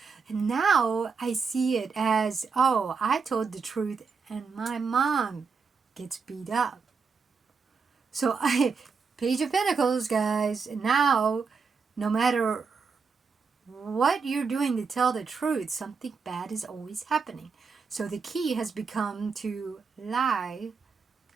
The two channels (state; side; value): quieter; left; 5.2 dB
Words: And now I see it as, oh, I told the truth and my mom gets beat up. So Page of Pentacles, guys, now no matter what you're doing to tell the truth, something bad is always happening. So the key has become to lie.